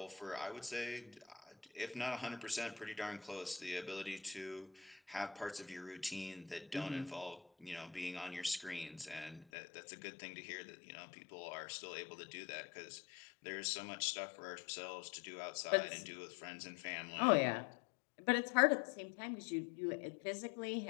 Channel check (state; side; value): drops out; right; at 9.5 s